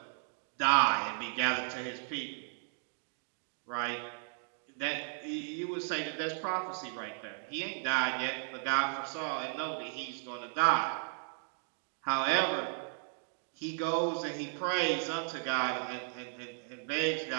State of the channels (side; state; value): left; silent; digital silence